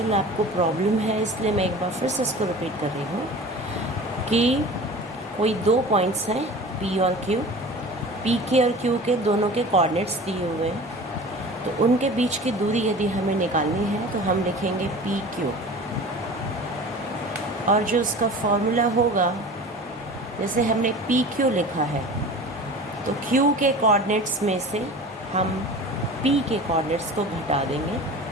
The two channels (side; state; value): both; normal; correlation 0.38